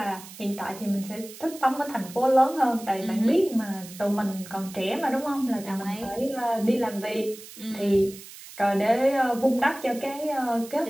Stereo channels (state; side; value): noise; right; hiss, 16 dB below the sound